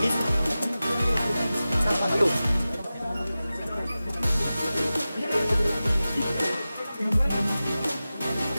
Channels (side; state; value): both; inverted; correlation -0.95